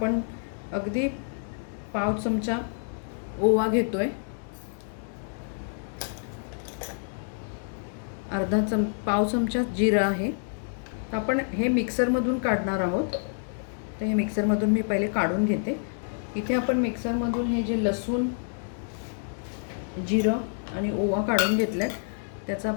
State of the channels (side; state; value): right; silent; digital silence